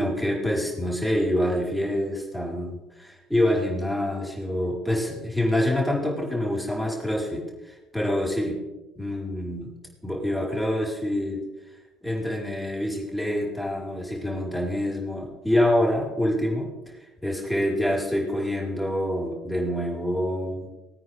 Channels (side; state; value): both; normal; correlation 0.86